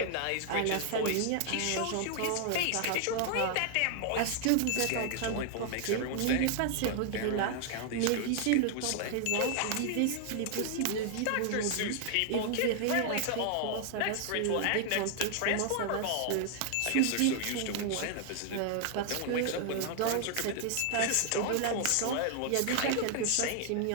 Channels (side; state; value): both; different; correlation 0.00